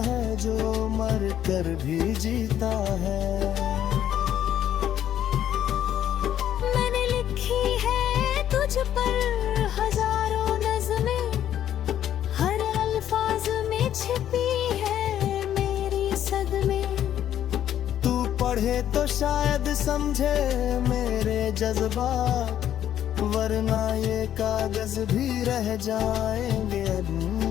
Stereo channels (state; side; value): quieter; right; 10.9 dB